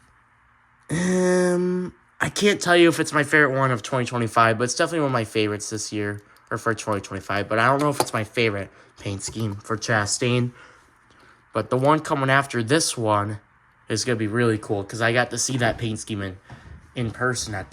I can't tell you if it's my favorite one of 2025, but it's definitely one of my favorites this year, or for 2025, but I don't know if it's my favorite paint scheme for Chastain. But the one coming after this one is going to be really cool because I got to see that paint scheme in person at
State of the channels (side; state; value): both; identical; correlation 1.00